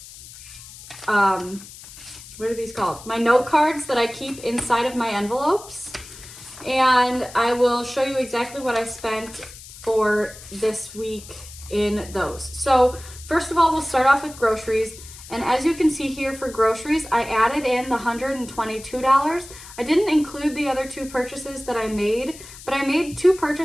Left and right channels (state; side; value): noise; left; hiss, 17 dB below the sound